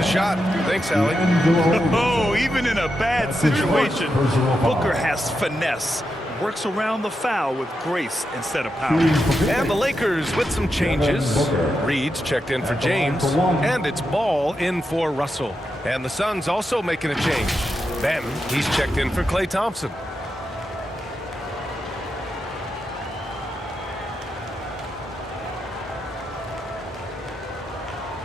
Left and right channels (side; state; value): both; normal; correlation 0.86